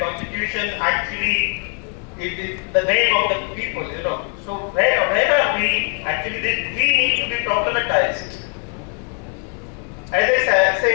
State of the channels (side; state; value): right; quieter; 39.0 dB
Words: Constitution actually it is the name of the people. So where are we? Actually, we need to be problematized. As I